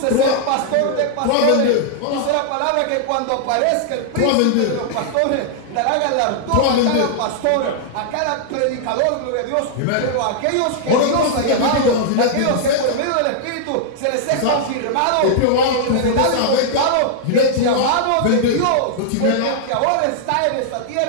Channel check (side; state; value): both; different; correlation -0.01